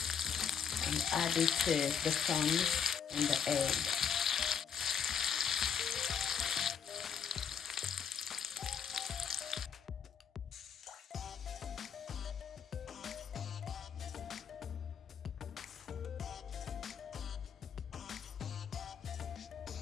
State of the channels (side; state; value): right; quieter; 7.4 dB